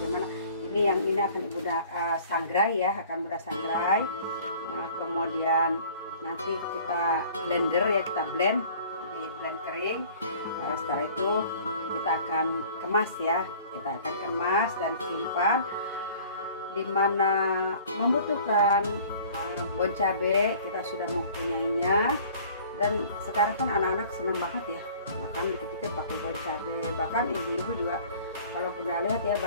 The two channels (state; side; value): inverted; both; correlation -0.49